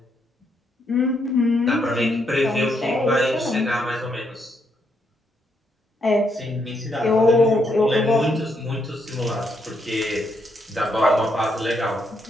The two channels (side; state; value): both; normal; correlation 0.76